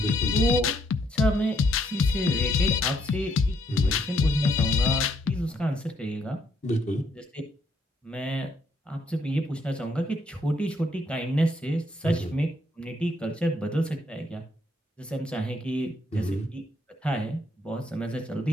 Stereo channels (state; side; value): normal; both; correlation 0.72